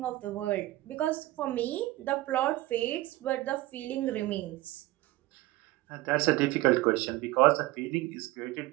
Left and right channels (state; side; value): quieter; left; 17.9 dB